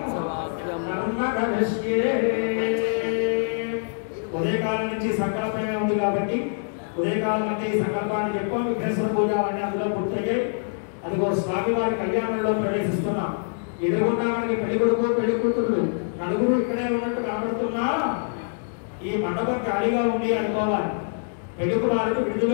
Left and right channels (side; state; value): right; silent; digital silence